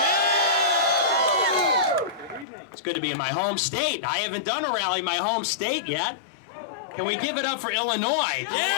It's good to be in my home state. I haven't done a rally in my home state yet. Can we give it up for Illinois?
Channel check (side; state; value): right; drops out; at 2.5 s